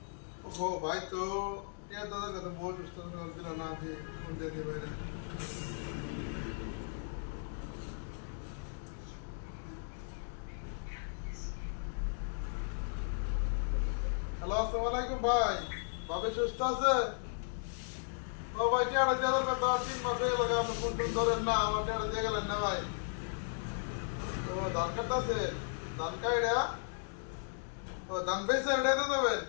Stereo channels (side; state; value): right; silent; digital silence